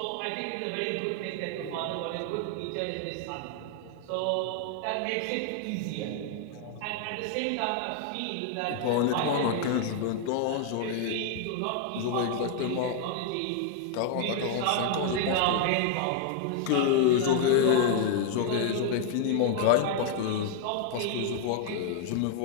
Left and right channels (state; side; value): different; both; correlation 0.00